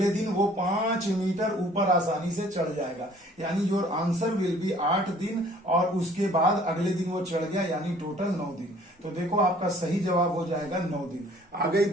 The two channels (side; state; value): both; normal; correlation 0.55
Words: दिन वो 5 मीटर ऊपर आसानी से चढ़ जाएगा, यानी योर आंसर विल बी 8 दिन, और उसके बाद अगले दिन वो चढ़ गया, यानी टोटल 9 दिन। तो देखो आपका सही जवाब हो जाएगा 9 दिन। आ गई